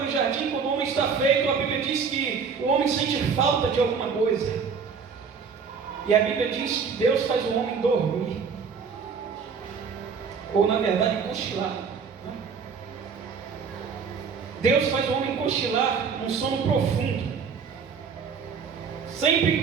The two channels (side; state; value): left; quieter; 5.9 dB